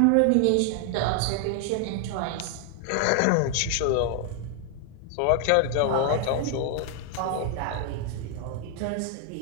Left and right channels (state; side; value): different; both; correlation 0.00